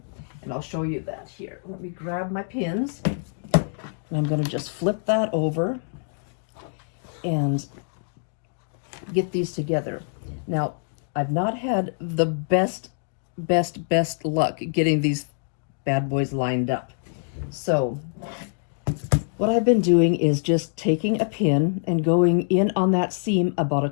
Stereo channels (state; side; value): silent; right; digital silence